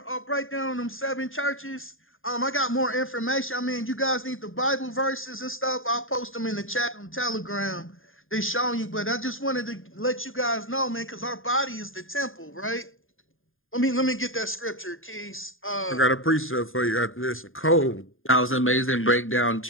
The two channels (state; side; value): late; right; 0.59 ms